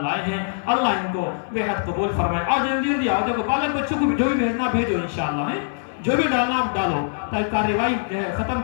لائے ہیں. اللہ ان کو بے حد قبول فرمائے. آؤ جلدی آؤ. دیکھو بالک بچوں کو جو بھی بھیجنا بھیجو انشاءاللہ, ہے جو بھی ڈالنا آپ ڈالو تاکہ کارروائی ختم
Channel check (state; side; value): silent; right; digital silence